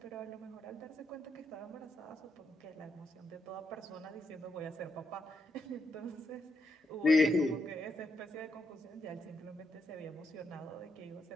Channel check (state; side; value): normal; both; correlation 0.81